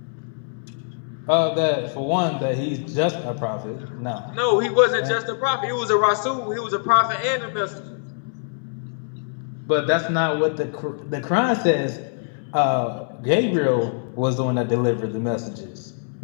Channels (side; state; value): right; silent; digital silence